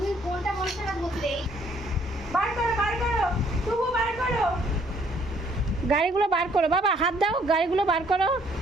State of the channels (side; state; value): both; normal; correlation 0.64